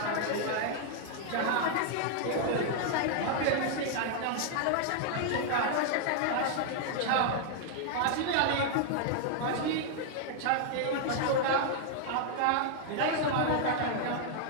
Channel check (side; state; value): both; different; correlation 0.00